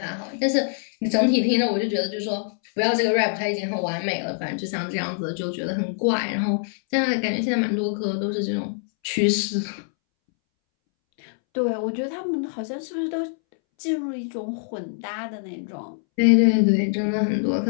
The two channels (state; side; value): silent; right; 62 dB below the other